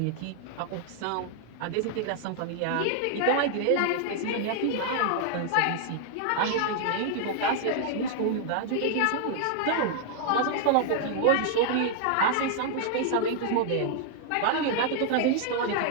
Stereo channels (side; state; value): both; different; correlation 0.00